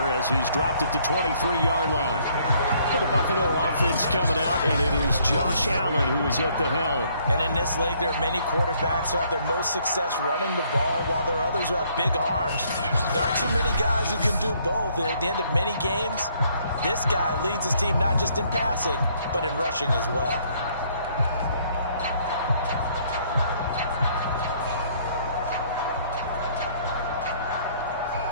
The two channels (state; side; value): inverted; both; correlation -0.65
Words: as he's dropped it to 23-yard line. For the Buffalo offense coming out, and it is Josh Allen who is at the helm. And in this league, there are many quarterbacks who have their most success running the ball, while there are others who have big arms. There aren't too many guys who can do both, and at the end of many games, this guy leads his team not just in passing, but in rushing as well.